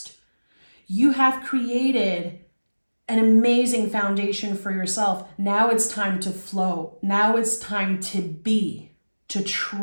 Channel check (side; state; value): both; inverted; correlation -1.00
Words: You have created an amazing foundation for yourself. Now it's time to flow. Now it's time to be, to